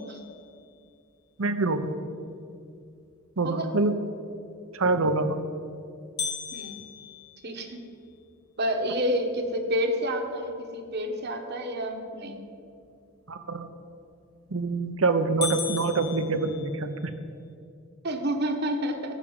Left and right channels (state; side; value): normal; both; correlation 0.02